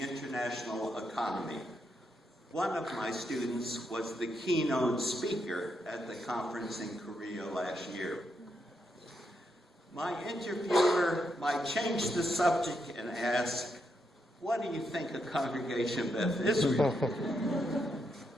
international economy. One of my students was the keynote speaker at the conference in Korea last year. My interviewer might change the subject and ask, what do you think of Congregation Beth Israel?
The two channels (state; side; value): normal; both; correlation 0.81